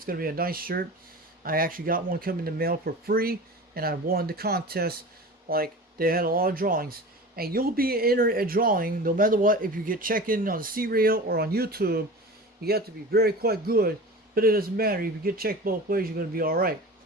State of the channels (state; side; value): normal; both; correlation 0.35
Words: going to be a nice shirt. I actually got one coming in the mail for free, and I won the contest. Like, they had a lot of drawings. And you'll be entered a drawing no matter what. If you get checked in on the C Radio or on YouTube, you have to be very quite good. But it doesn't matter. If you get checked both ways, you're going to be alright.